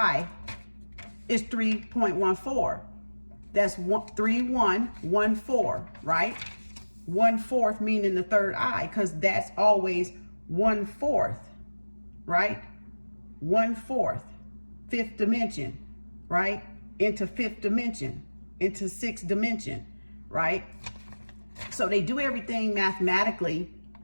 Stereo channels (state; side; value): inverted; both; correlation -1.00